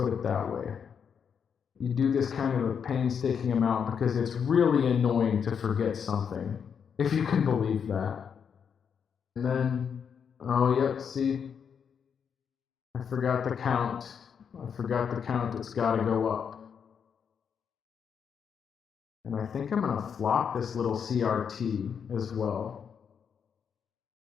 it that way. You do this kind of a painstaking amount because it's really annoying to forget something, if you can believe that. And then, oh yep, see, I forgot the count. It's got to go up. And I think I'm going to flop this little CRT as well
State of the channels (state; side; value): quieter; right; 7.1 dB